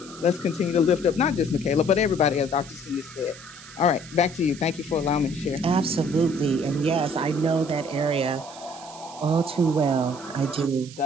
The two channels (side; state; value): right; noise; hiss, 18 dB below the sound